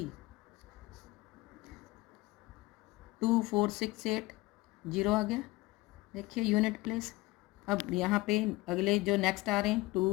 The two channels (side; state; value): right; quieter; 20.4 dB